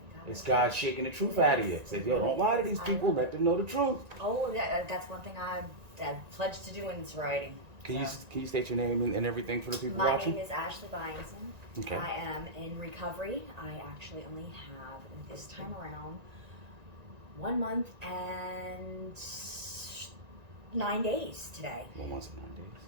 It's God shaking the truth out of you. Say, yo, don't lie to these people. Let them know the truth. Oh, yeah, that's one thing I pledged to do in sobriety. Can you state your name and everything for the people My watching? name is Ashley Byington. Okay. I am in recovery. I actually only have, this time around, 1 month and 9 days today. 1 month and 9 days.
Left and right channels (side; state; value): left; late; 1.9 ms